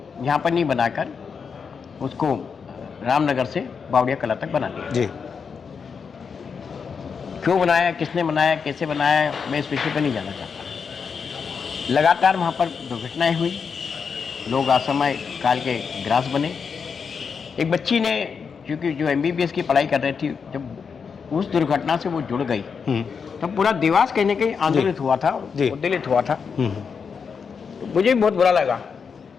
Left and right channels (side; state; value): right; quieter; 6.0 dB